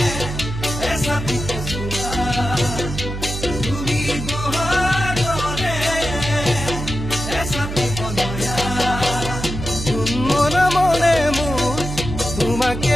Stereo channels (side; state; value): right; noise; hum, 6 dB below the sound